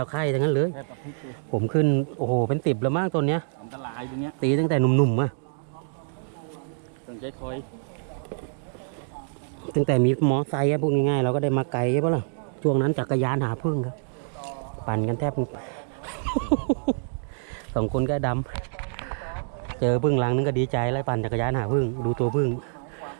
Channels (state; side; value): silent; left; digital silence